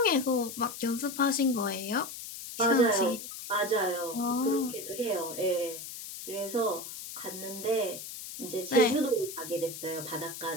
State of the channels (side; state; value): left; noise; hiss, 10 dB below the sound